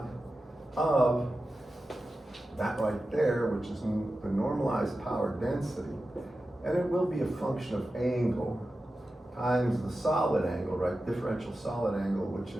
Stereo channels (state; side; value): normal; both; correlation 0.93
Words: of that right there, which is the normalized power density, and it will be a function of angle times the solid angle, right? Differential solid angle, which